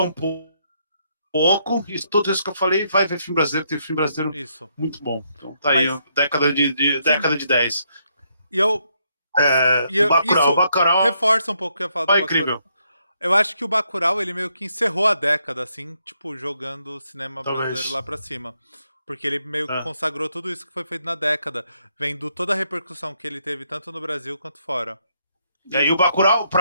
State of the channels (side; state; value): both; inverted; correlation -0.75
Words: pouco, e tudo isso que eu falei, vai ver filme brasileiro, tem filme brasileiro Isso. muito bom. Então tá aí, Mas, sim. década de 10. E eu. Bacurau, Isso Bacurau reforça um pouco o que eu ia falar do é Bacurau. incrível, Eu acho que o Bacurau, ele meio que encerrou a década, assim, tipo, jogando o cinema brasileiro talvez. lá pra cima. Porque ele meio que É. consagrou tudo isso que foi feito na década, vendo toda a repercussão que ele teve tanto no Brasil quanto fora. E E, o Bacurau,